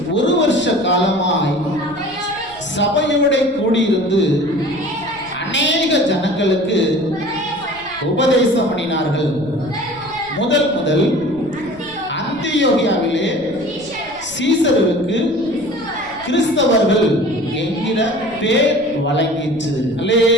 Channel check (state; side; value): noise; left; rumble, 23 dB below the sound